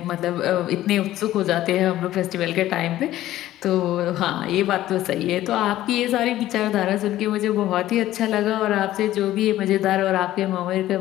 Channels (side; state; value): right; quieter; 14.3 dB